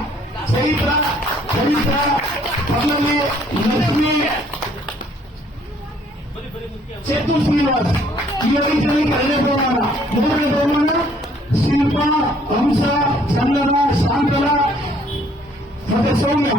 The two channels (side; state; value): both; normal; correlation 0.62